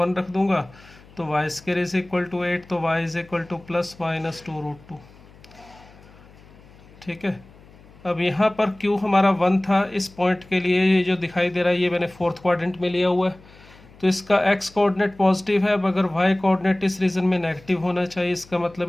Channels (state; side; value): noise; left; hum, 24 dB below the sound